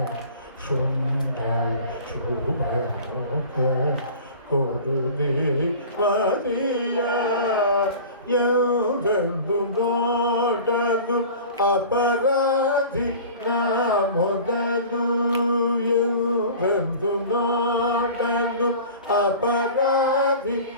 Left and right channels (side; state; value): both; inverted; correlation -0.40